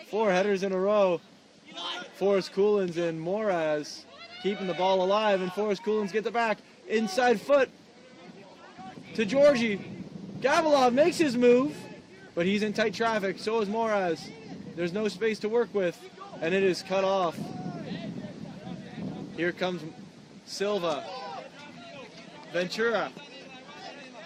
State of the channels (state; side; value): identical; both; correlation 1.00